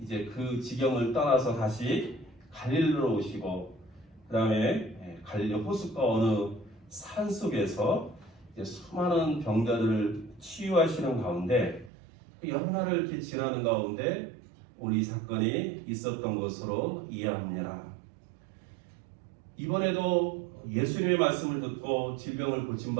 그 지경을 떠나서 다시 갈릴리로 오시고 그 다음에 갈릴리 호숫가 어느 산 속에서 이제 수많은 병자들을 치유하시는 가운데 여러 날을 이렇게 지나는 가운데 오늘 이 사건이 있었던 것으로 이해합니다. 이번에도 예수님의 말씀을 듣고 질병을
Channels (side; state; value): left; drops out; at 11.9 s